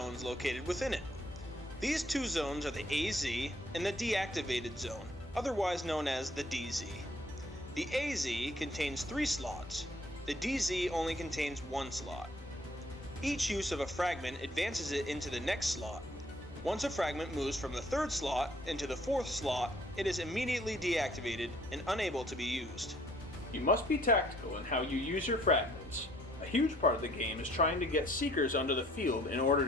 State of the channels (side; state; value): both; normal; correlation 0.62